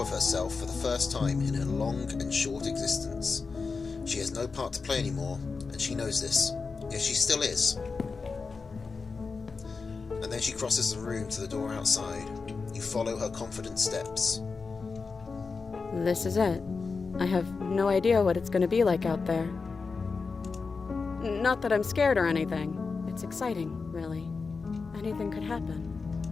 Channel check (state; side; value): quieter; right; 4.6 dB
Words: of herself for the first time in her long and short existence. She has no part to play anymore, and she knows this. Yet she still is. And then she crosses the room to the door outside. You follow her confident steps. This is it. I have no idea what it's going to be like out there. Not that I'm scared or anything. It's exciting, really. Anything could happen.